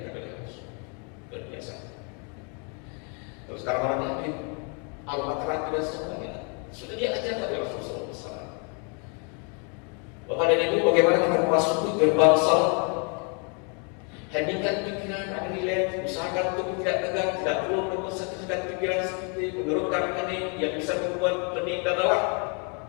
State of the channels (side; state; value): right; quieter; 37.3 dB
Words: oleh Rasul. Luar biasa. Terus sekarang orang yang aromaterapi dan semuanya sudah diajarkan oleh Rasulullah SAW. Bapak dan Ibu, bagaimana kita memasuki gerbang salat? Hendingkan pikiran, ada nilai, usahakan untuk tidak tegang, tidak perlu mengonsentrasikan pikiran seperti menurunkan kening yang bisa membuat kening dan lelah.